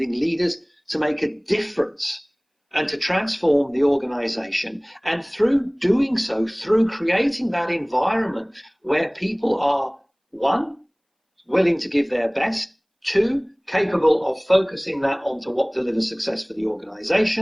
leaders to make a difference and to transform the organization. And through doing so, through creating that environment where people are, one, willing to give their best, two, capable of focusing that onto what delivers success for the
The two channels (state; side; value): identical; both; correlation 1.00